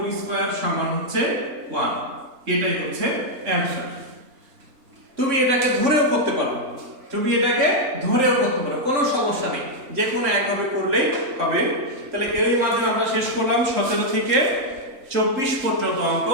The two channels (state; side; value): late; left; 3.7 ms